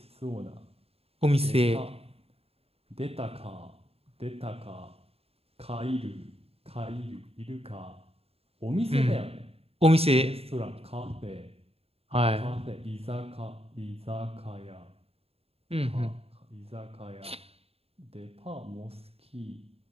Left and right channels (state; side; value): late; left; 0.29 ms